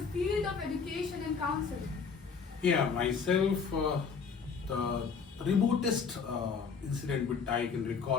field of education and counseling? Yeah, myself, the remotest incident which I can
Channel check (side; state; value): right; quieter; 5.7 dB